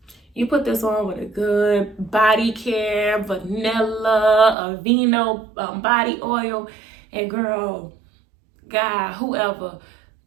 You put this on with a good body care, vanilla, Aveeno body oil, and girl, guy, whoever,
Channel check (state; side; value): drops out; left; at 4.5 s